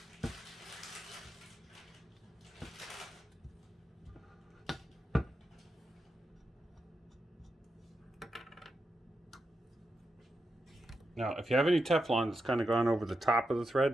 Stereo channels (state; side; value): normal; both; correlation 0.87